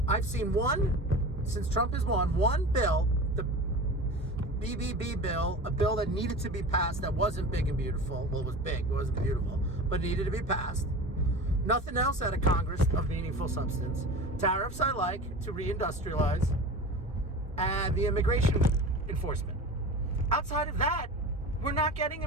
I've seen one, since Trump has won, one bill, the BBB bill, a bill that needed to be passed that wasn't big and beautiful. Well, it was big, it wasn't beautiful, but needed to be passed. Nothing else out of Congress of meaningful substance. Tariffs I like to reindustrialize, and the immigration enforcement. Outside of that, we're not getting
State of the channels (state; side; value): normal; both; correlation 0.33